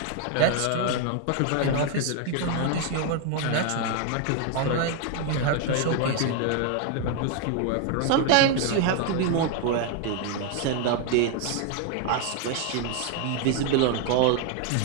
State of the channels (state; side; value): different; both; correlation 0.01